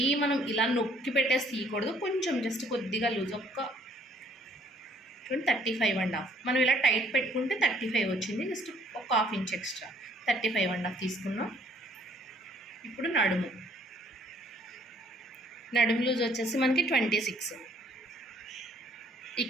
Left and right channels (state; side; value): normal; both; correlation 0.62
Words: మనం ఇలా నొక్కి పెట్టేసి తీయకూడదు, కొంచెం జస్ట్ కొద్దిగా లూజ్, ఒక్క 35.5. మనం ఇలా టైట్ పెట్టుకుంటే 35 వచ్చింది, జస్ట్ ఒక 1/2 ఇంచ్ ఎక్స్ట్రా 35.5 తీసుకున్నాం. ఇప్పుడు నడుము లూజ్ వచ్చేసి మనకి 26